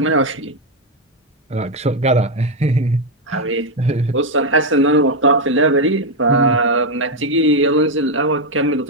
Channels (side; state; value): both; normal; correlation 0.04